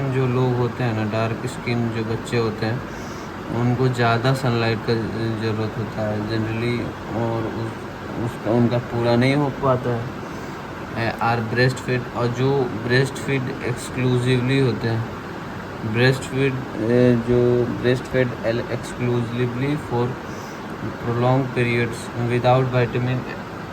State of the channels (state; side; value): identical; both; correlation 1.00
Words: जो लोग होते हैं ना, डार्क स्किन जो बच्चे होते हैं, उनको ज़्यादा सनलाइट का ज़रूरत होता है जनरली, और उसका उनका पूरा नहीं हो पाता है। आर ब्रेस्ट फीड, और जो ब्रेस्ट फीड एक्सक्लूसिवली होते हैं, जो breast feed exclusively for prolong periods without vitamin,